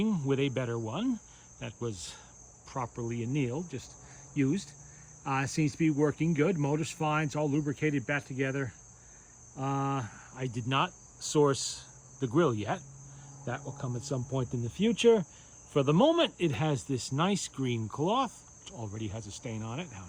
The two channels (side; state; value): both; identical; correlation 1.00